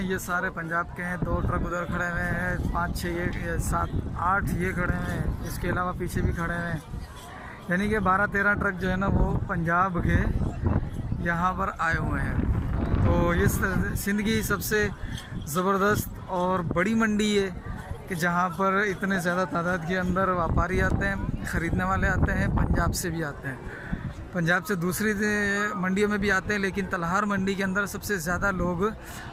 ये सारे पंजाब के हैं। 2 ट्रक उधर खड़े हुए हैं, 5-6 ये 7-8 ये खड़े हुए हैं। इसके अलावा पीछे भी खड़े हुए हैं, यानी कि 12-13 ट्रक जो है ना वो पंजाब के यहाँ पर आए हुए हैं। तो ये सिंध की सबसे ज़बरदस्त और बड़ी मंडी है कि जहाँ पर इतने ज़्यादा तादाद के अंदर व्यापारी आते हैं, ख़रीदने वाले आते हैं, पंजाब से भी आते हैं। पंजाब से दूसरी मंडियों में भी आते हैं, लेकिन तलहार मंडी के अंदर सबसे ज़्यादा लोग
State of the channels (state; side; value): identical; both; correlation 1.00